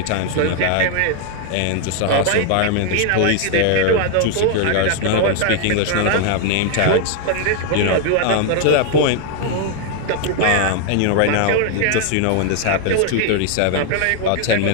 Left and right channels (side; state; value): both; different; correlation 0.00